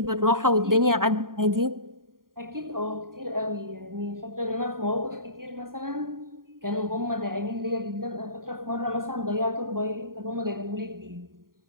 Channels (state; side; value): late; left; 0.91 ms